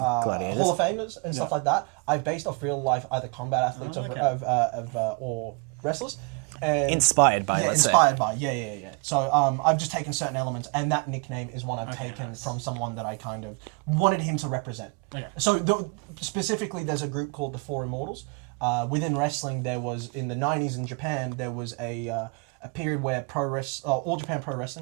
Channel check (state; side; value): quieter; left; 32.5 dB